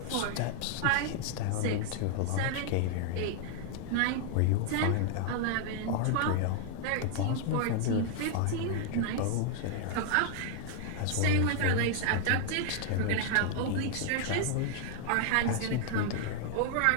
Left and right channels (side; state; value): both; different; correlation 0.00